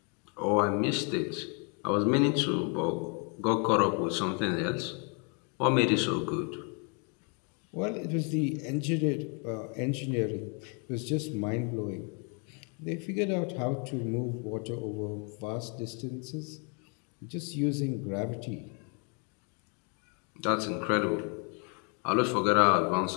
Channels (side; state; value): right; quieter; 36.9 dB